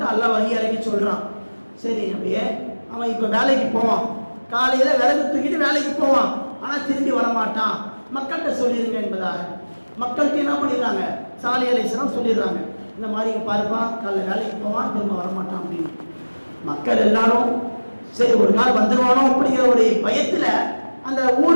அல்லாஹ் வஹி இறக்கி சொல்றான், சரி நபியே அவன் இப்போ வேலைக்கு போவான், காலையில விறகு தூக்கிட்டு வேலைக்கு போவான், ஆனா திரும்பி வரமாட்டான், மக்கள்கிட்ட சொல்லிடுங்க என்பதாக. மக்கள்கிட்ட என்ன பண்ணிடுறாங்க, சாலிஹ் அலைஹிஸ்ஸலாம் சொல்லிடுறாங்க, இந்த மாதிரி பாருப்பா காலைல வேலைக்கு போவான் திரும்ப வரமாட்டான் அப்படின்னு. மக்கள் எல்லாரும் சரி ஒரு நாள் வந்துடுவானோ அப்படிங்கிற ஒரு பயத்துல அந்த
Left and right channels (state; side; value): inverted; both; correlation -1.00